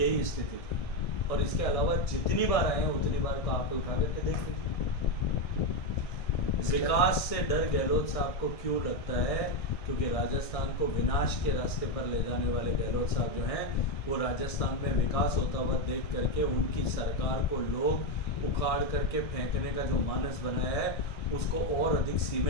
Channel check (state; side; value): late; right; 1.6 ms